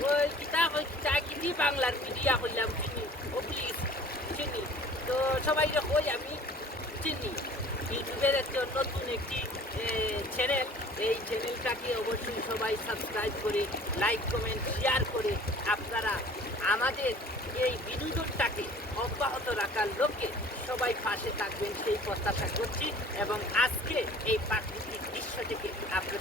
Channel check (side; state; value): both; normal; correlation 0.48